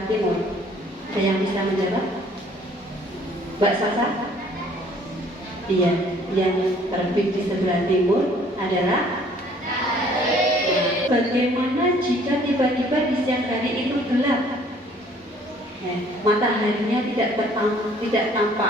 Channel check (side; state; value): both; normal; correlation 0.58